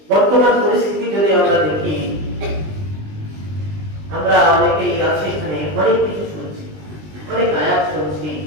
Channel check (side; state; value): left; late; 20 ms